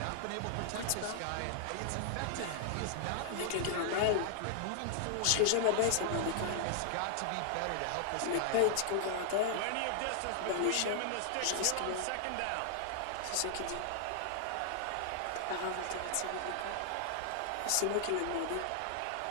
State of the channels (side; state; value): both; different; correlation -0.01